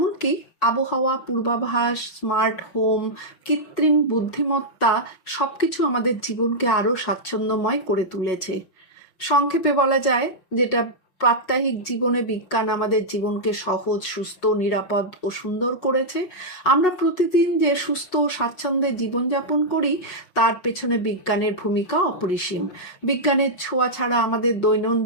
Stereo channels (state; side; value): late; right; 5.4 ms